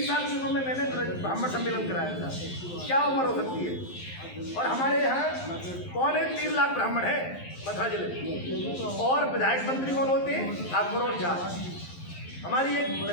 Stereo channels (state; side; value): late; right; 11 ms